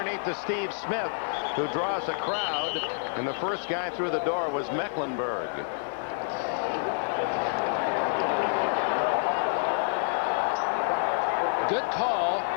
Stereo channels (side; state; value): right; silent; digital silence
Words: to Steve Smith, who draws a crowd, and the first guy through the door was Mecklenburg. Good call